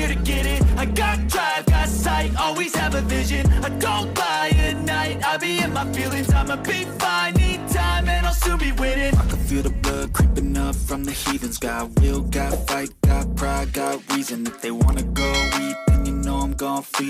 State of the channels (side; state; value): both; identical; correlation 1.00